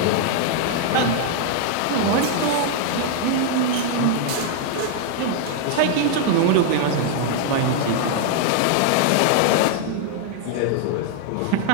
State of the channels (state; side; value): different; both; correlation 0.00